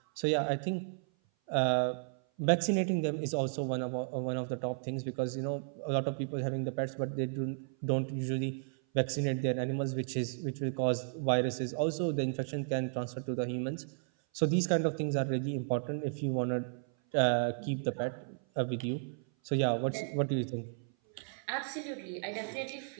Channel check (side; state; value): left; silent; 55 dB below the other